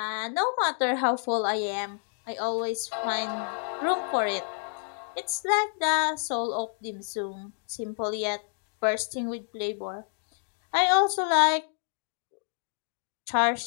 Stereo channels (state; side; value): silent; right; 59 dB below the other